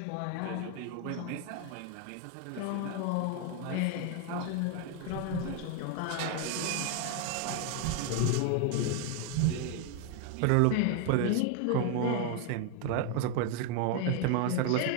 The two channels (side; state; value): both; different; correlation 0.01